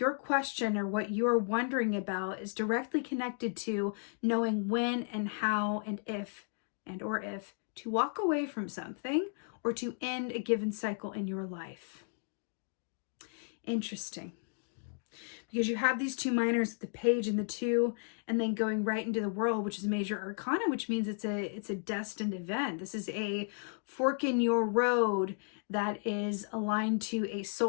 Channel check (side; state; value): right; silent; 55 dB below the other